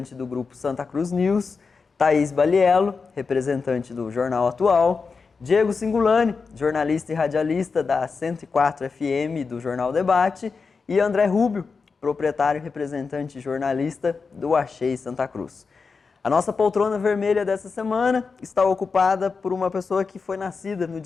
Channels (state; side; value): quieter; right; 4.9 dB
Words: do Grupo Santa Cruz News, Thaís Baliello, representante do Jornal Atual, Diego Singulani, jornalista e radialista da 104 FM do Jornal Debate, e André Rubio, proprietário e representante jornalista do Achei Santa Cruz. A nossa poltrona vermelha dessa semana está ocupada por uma pessoa que foi nascida no